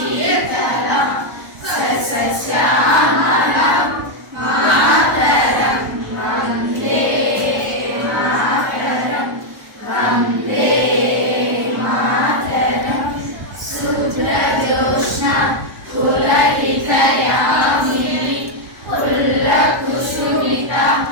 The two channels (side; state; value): left; late; 1.0 ms